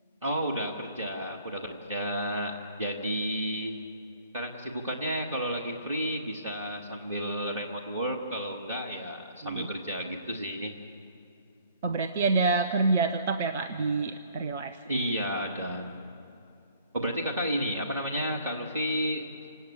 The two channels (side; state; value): both; inverted; correlation -0.57